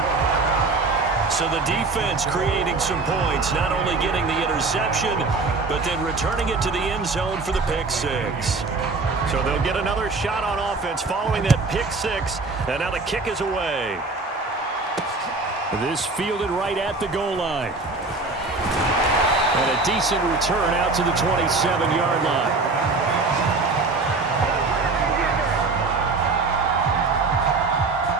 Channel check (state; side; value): quieter; left; 3.7 dB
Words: So the defense creating some points, not only getting the interception, but then returning it to the end zone for the pick six. So they'll get another shot on offense following that pick six, and now the kick is away. This fielded right at the goal line. And a decent return out to the 27-yard line.